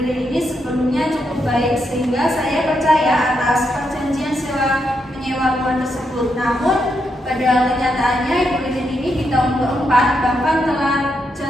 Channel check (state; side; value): normal; both; correlation 0.81